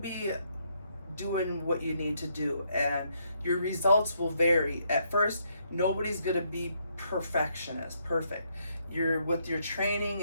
doing what you need to do, and your results will vary. At first, nobody's gonna be perfect. You're with your training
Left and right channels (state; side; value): inverted; both; correlation -0.74